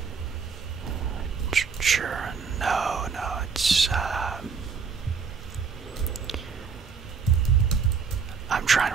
Churin. No, it's I'm trying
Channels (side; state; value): left; quieter; 5.7 dB